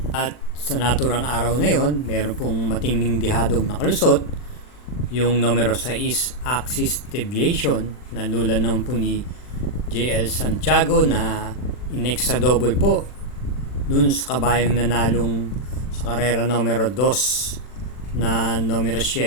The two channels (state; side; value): late; right; 40 ms